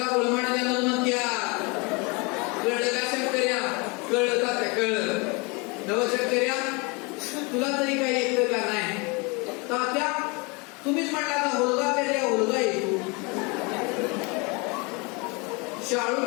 गुळमाट द्यायला म्हणत्या. कळलं का शंकर्या? कळलं का? त्या कळलं नवशंकर्या, तुला तरी काही येतं का नाही? तात्या तुम्हीच म्हटला का हुलगा पेरल्यावर हुलगा येतो, शाळू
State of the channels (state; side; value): quieter; right; 29.1 dB